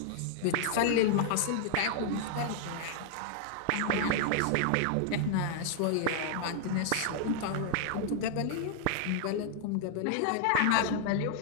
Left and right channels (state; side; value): different; both; correlation -0.01